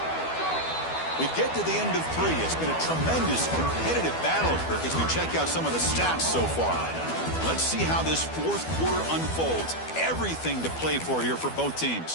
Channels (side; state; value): right; late; 12 ms